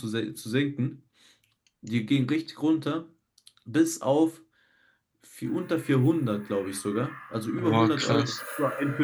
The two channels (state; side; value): identical; both; correlation 1.00